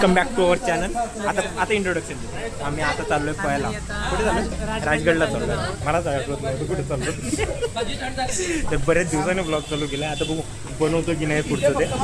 back to our channel. आता इंट्रोडक्शन देतो. आम्ही आता चाललोय पळायला. कुठे चाललो. राजगडला चाललो. मला आठवत नव्हतं कुठे चाललो. तर बरेच दिवसाने ब्लॉग चालू केला. आता बघू बनवतो की नाही पुढचं ते.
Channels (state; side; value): identical; both; correlation 1.00